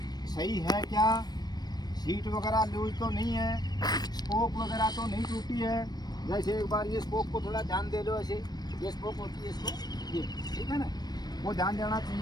सही है क्या, सीट वगैरह लूज तो नहीं है, स्पोक वगैरह तो नहीं टूटी है। जैसे एक बार ये स्पोक को थोड़ा ध्यान दे लो, ऐसे ये स्पोक होती है इसको, ये ठीक है ना, वो ध्यान देना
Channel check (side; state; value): right; late; 0.19 ms